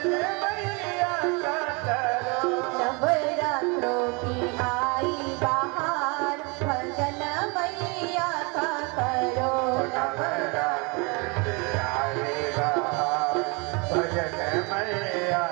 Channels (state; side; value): quieter; left; 30.1 dB